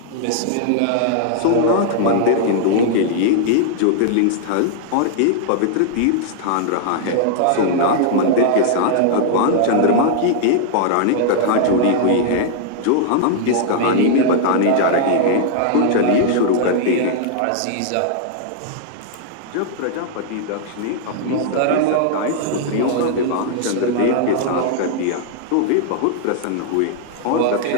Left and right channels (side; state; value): both; different; correlation -0.01